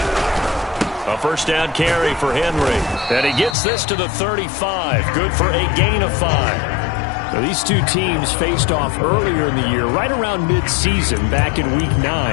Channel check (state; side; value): drops out; right; at 3.6 s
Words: A first down carry for Henry. And he gets this to the 35. Good for a gain of 5. Now, these two teams faced off earlier in the year, right around mid-season, back in Week